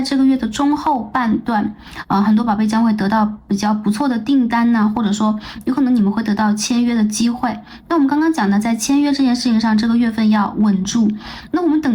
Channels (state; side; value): identical; both; correlation 1.00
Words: 这个月的中后半段，很多宝贝将会得到比较不错的订单呢，或者说有可能你们会得到签约的机会。那我们刚刚讲的在签约这件事情上，这个月份要稳住。那我们